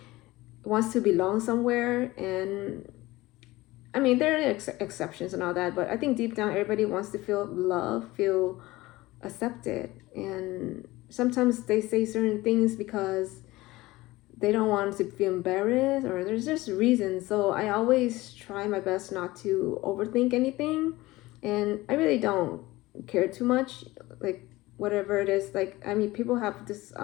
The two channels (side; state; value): right; quieter; 19.2 dB